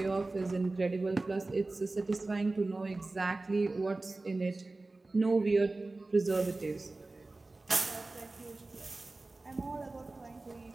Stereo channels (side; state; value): left; quieter; 3.2 dB